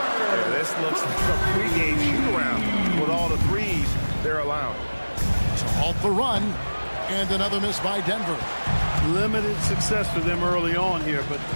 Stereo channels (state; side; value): inverted; both; correlation -1.00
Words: this looks like a pregame shoot-around with all the threes they're allowed. To halt the run, and another miss by Denver. Limited success for them early on here, but